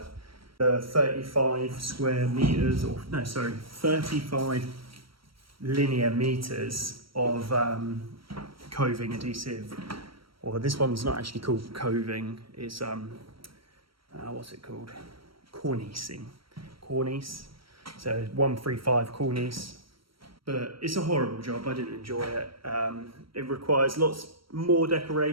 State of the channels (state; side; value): late; left; 0.74 ms